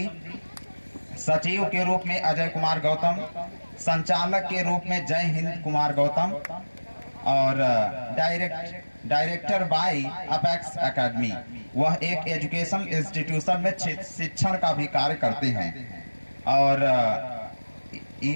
सचिव के रूप में अजय कुमार गौतम, संचालक के रूप में जय हिंद कुमार गौतम और डायरेक्टर बाय अपेक्स एकेडमी, वह एक एजुकेशन इंस्टीट्यूशन में शिक्षण का भी कार्य करते हैं। और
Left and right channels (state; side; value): inverted; both; correlation -1.00